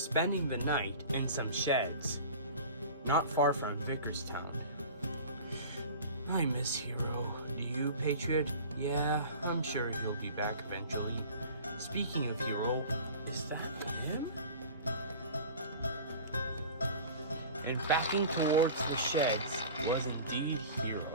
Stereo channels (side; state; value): both; inverted; correlation -0.39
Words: the night in some sheds, not far from Vickerstown. I miss Hero. Do you, Patriot? Yeah, I'm sure he'll be back eventually. Speaking of Hero, is that him? And backing towards the sheds was indeed Hero.